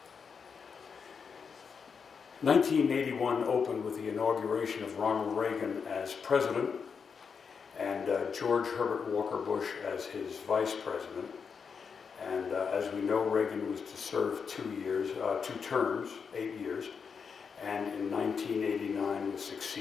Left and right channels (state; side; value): quieter; right; 6.0 dB